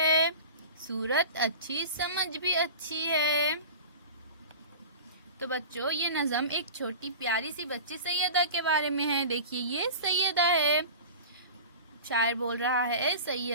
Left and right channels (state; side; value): inverted; both; correlation -0.34